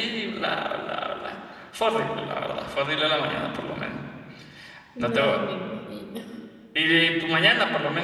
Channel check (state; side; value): identical; both; correlation 1.00